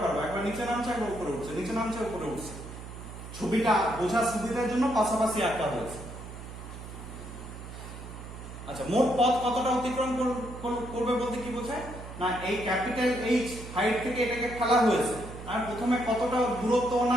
পারবে, একবার নিচে নামছে একবার উপরে উঠছে, নিচে নামছে উপরে উঠছে। ছবিটা বোঝার সুবিধার জন্য পাশাপাশি আঁকা হয়েছে। আচ্ছা, মোট পথ কতটা অতিক্রম করবে বলতে কি বোঝায় না, এই ক্যাপিটাল এইচ হাইট থেকে এটাকে ফেলা হয়েছে, আর প্রথমে কতটা দূরত্ব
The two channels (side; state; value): right; noise; hum, 12 dB below the sound